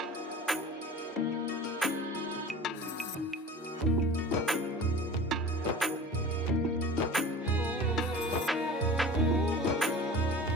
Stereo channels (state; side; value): normal; both; correlation 0.38